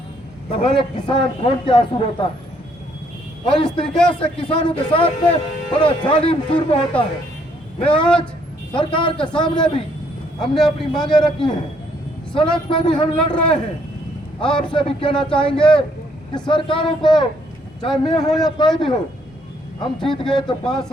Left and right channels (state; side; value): normal; both; correlation 0.68